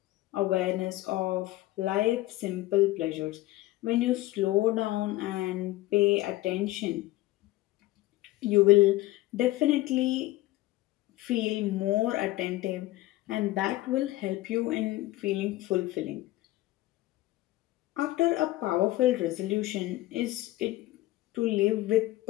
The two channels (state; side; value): quieter; right; 17.4 dB